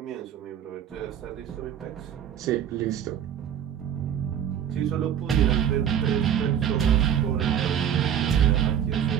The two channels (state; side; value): quieter; left; 9.4 dB